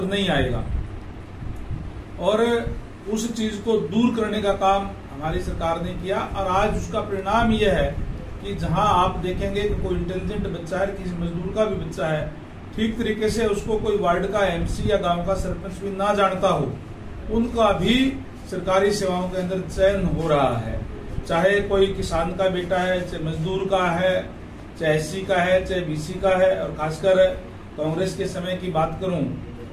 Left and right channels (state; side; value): identical; both; correlation 1.00